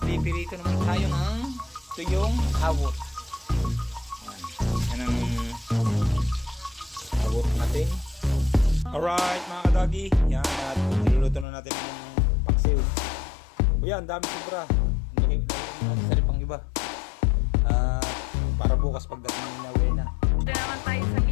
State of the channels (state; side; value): drops out; right; at 11.5 s